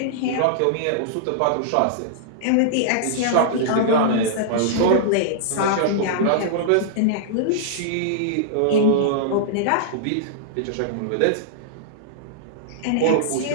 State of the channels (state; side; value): different; both; correlation -0.02